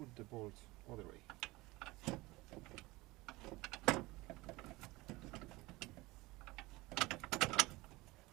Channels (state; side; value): quieter; left; 21.2 dB